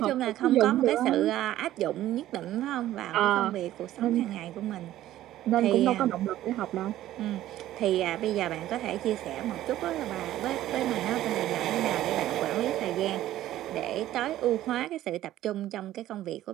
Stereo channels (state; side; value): quieter; left; 13.8 dB